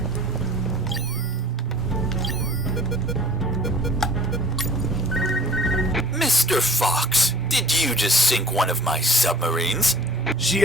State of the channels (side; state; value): both; normal; correlation 0.48